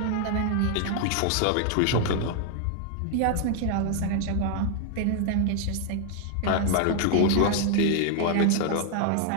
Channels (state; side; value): different; both; correlation 0.00